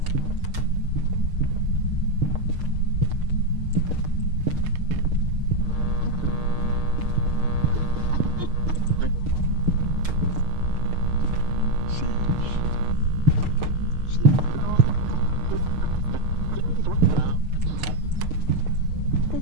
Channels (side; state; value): left; late; 6.6 ms